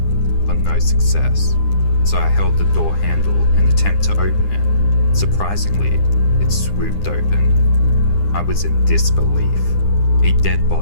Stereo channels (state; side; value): late; right; 9.9 ms